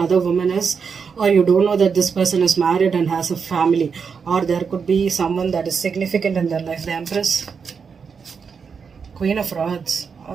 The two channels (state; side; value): quieter; left; 5.9 dB